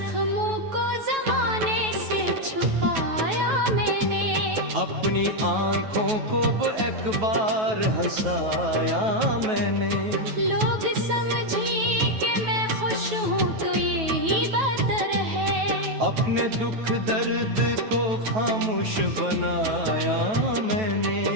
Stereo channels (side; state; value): left; late; 9.2 ms